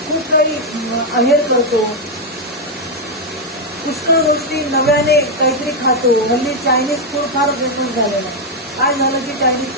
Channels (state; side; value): normal; both; correlation 0.01